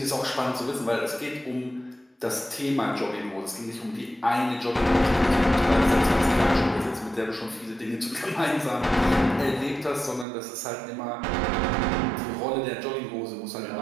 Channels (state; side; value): drops out; left; at 10.2 s